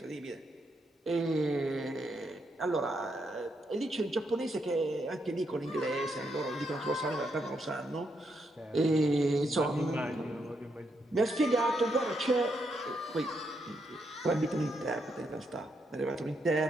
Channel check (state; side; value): normal; both; correlation 0.79